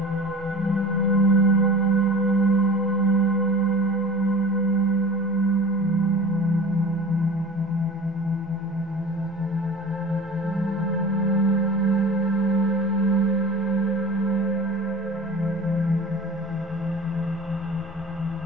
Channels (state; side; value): normal; both; correlation 0.38